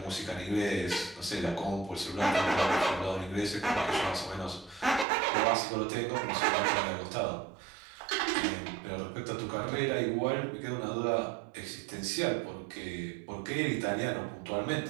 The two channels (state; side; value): drops out; left; at 5.1 s